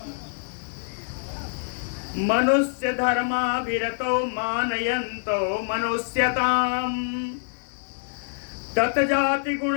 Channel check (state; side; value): silent; right; digital silence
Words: मनुष्य धर्माभिरतो मानयन्तो मनुष्यताम, ततजाति गुण